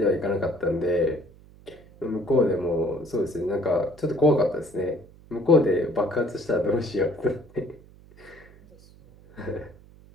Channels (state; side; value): noise; right; hum, 24 dB below the sound